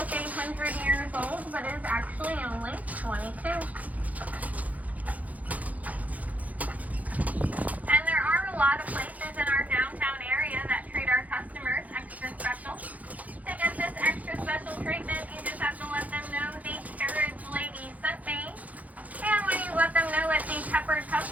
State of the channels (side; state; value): left; late; 0.075 ms